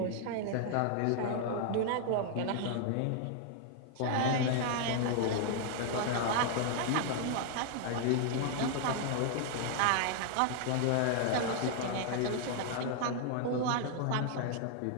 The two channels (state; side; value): different; both; correlation 0.00